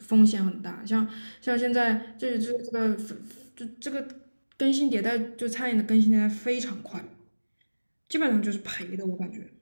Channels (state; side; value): inverted; both; correlation -1.00